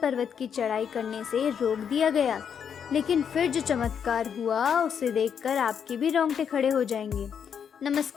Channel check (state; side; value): quieter; right; 7.6 dB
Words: पर्वत की चढ़ाई करने से रोक दिया गया, लेकिन फिर जो चमत्कार हुआ उसे देखकर आपके भी रोंगटे खड़े हो जाएंगे।